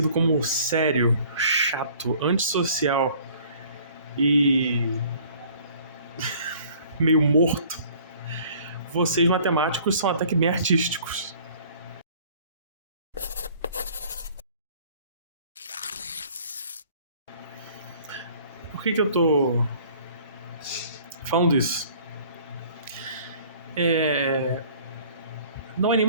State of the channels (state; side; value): inverted; both; correlation -0.53